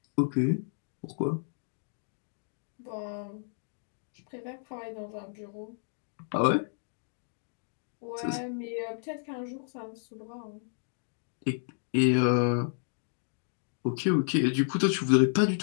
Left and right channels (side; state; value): right; silent; digital silence